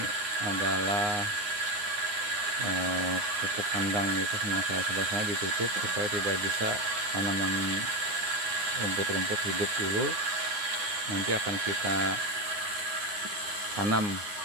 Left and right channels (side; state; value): left; late; 9.7 ms